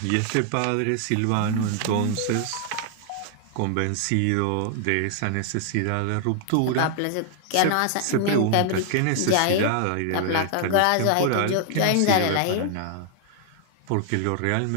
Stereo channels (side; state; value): both; different; correlation 0.00